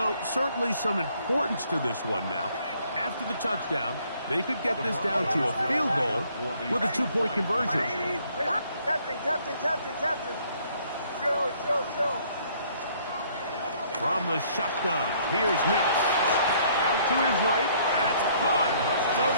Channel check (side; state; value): both; inverted; correlation -0.63